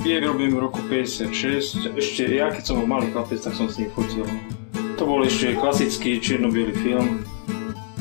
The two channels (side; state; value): right; silent; 63 dB below the other